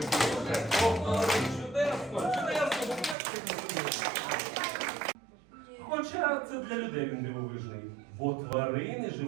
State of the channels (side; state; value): left; drops out; at 3.2 s